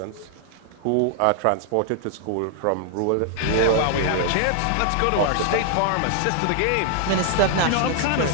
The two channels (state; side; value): different; both; correlation -0.01